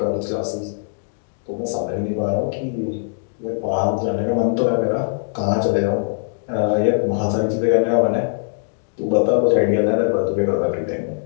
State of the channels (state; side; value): silent; right; digital silence